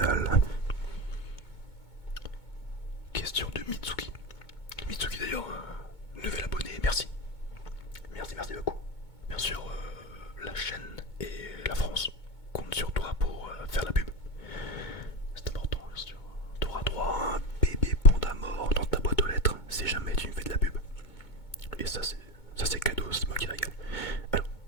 Question de Mitsuki. Mitsuki d'ailleurs, nouvel abonné, merci. Merci et ça c'est cadeau, c'est moi qui régale. Alors,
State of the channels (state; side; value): late; right; 2.2 ms